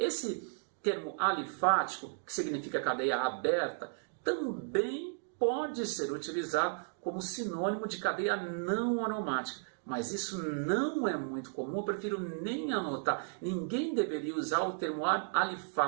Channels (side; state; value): left; silent; digital silence